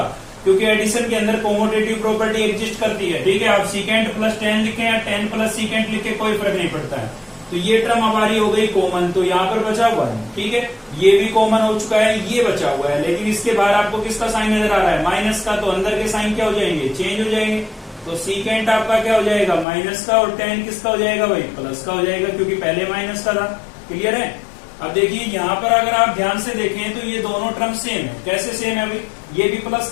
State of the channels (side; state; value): right; drops out; at 19.7 s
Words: क्योंकि एडिशन के अंदर कॉमोटेटिव प्रॉपर्टी एग्जिस्ट करती है। ठीक है, आप सीकेंट प्लस tan लिखें या tan प्लस सीकेंट लिखे कोई फर्क नहीं पड़ता है। तो ये टर्म हमारी हो गई कॉमन, तो यहाँ पर बचा 1। ठीक है, ये भी कॉमन हो चुका है, ये बचा हुआ है, लेकिन इसके बाहर आपको किसका साइन नजर आ रहा है, माइनस का, तो अंदर के साइन क्या हो जाएंगे, चेंज हो जाएंगे। तो सीकेंट आपका क्या हो जाएगा, माइनस का, और tan किसका हो जाएगा भाई, प्लस का हो जाएगा, क्योंकि पहले माइनस का था। क्लियर है, अब देखिए यहाँ पर अगर आप ध्यान से देखें तो ये दोनों टर्म सेम है। कैसे सेम है भाई, ये भी प्लस